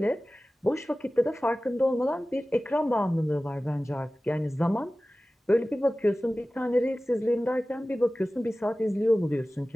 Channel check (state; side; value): normal; both; correlation 0.97